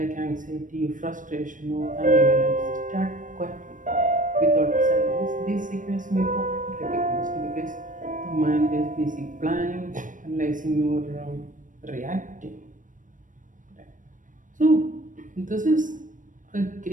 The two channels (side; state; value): left; late; 0.38 ms